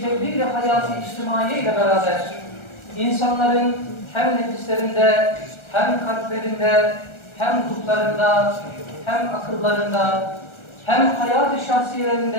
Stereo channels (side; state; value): right; late; 1.3 ms